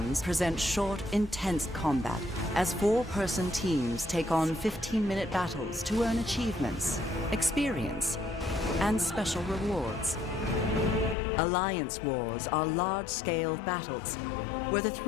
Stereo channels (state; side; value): drops out; right; at 11.2 s